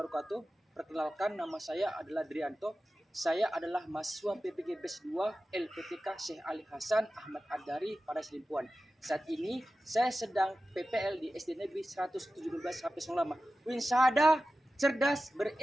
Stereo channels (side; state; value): both; normal; correlation 0.94